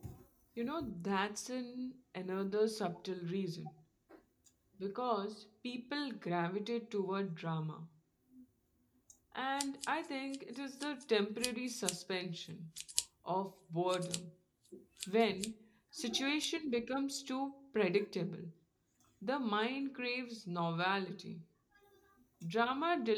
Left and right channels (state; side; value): identical; both; correlation 1.00